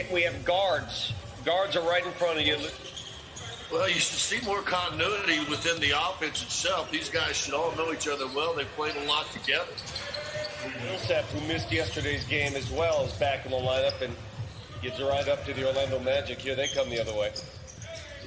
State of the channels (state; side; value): identical; both; correlation 1.00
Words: guards. Guards are right in front of you. Well, you should see more continuity within the offense itself. These guys should all know each other well. They've played a lot together. Millsap, who missed yesterday's game as well, is back in the lineup and gets right up to the Orlando Magic. Here they come the other way.